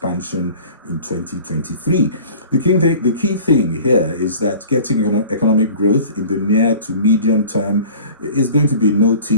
in 2023. The key thing here is that getting economic growth in the near to medium term is going to be no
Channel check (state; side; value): inverted; both; correlation -0.44